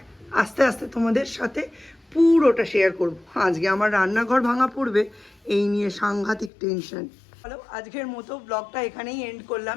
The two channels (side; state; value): right; drops out; at 6.5 s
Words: আস্তে আস্তে তোমাদের সাথে পুরোটা শেয়ার করব। আজকে আমার রান্নাঘর ভাঙা পড়বে, এই নিয়ে সাংঘাতিক টেনশন। হ্যালো, আজকের মতো ব্লগটা এখানেই এন্ড করলাম।